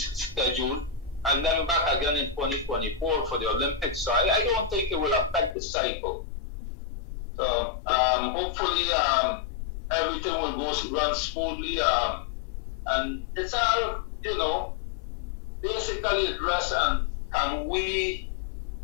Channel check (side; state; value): right; drops out; at 5.6 s